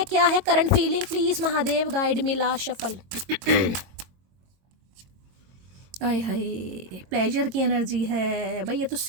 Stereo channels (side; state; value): left; late; 22 ms